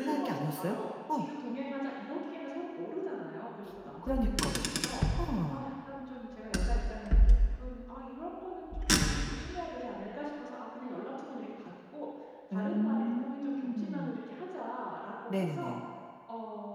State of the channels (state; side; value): identical; both; correlation 1.00